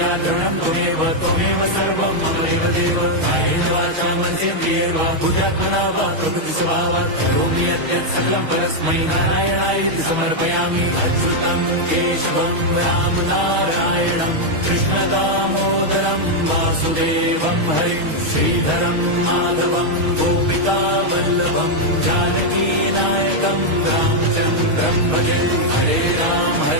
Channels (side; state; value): left; late; 6.3 ms